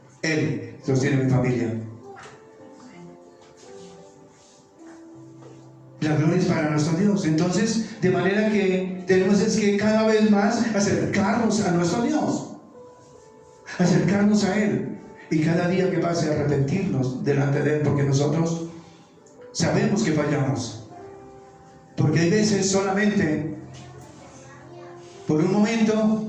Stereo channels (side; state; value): both; identical; correlation 1.00